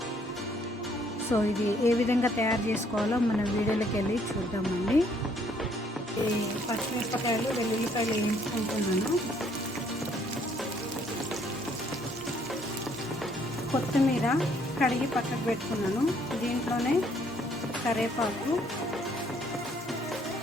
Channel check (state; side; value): normal; both; correlation 0.65